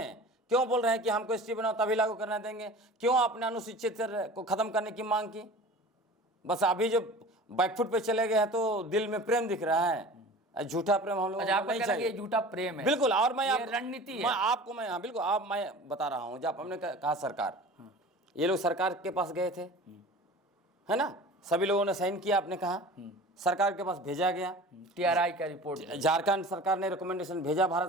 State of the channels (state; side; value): normal; both; correlation 0.40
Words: क्यों बोल रहे हैं कि हमको एसटी बनाओ तभी लागू करने देंगे? क्यों आपने अनुसूचित को खत्म करने की मांग की? बस अभी जो बैकफुट पे चले गए हैं तो दिल में प्रेम दिख रहा है, झूठा प्रेम हम लोग नहीं चाहिए। ये झूठा प्रेम है, बिल्कुल। और मैं रणनीति है। मैं आपको मैं हाँ बिल्कुल आप मैं बता रहा हूँ, जब हमने कहा सरकार, ये लोग सरकार के पास गए थे, है ना, सभी लोगों ने साइन किया, आपने कहा सरकार के पास भेजा गया, टीआरआई का रिपोर्ट, झारखंड सरकार ने रिकमेंडेशन भेजा